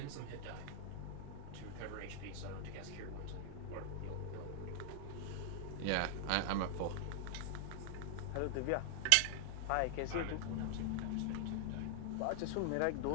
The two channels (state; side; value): different; both; correlation -0.01